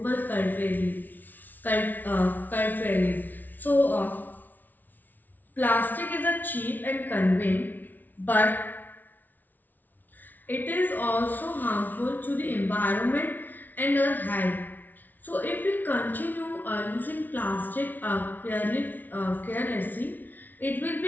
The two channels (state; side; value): late; right; 0.084 ms